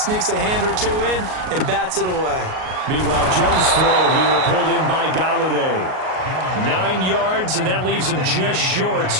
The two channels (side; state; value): left; late; 38 ms